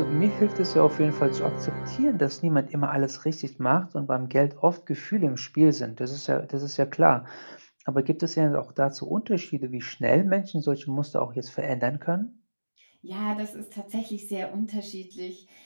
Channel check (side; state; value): both; inverted; correlation -1.00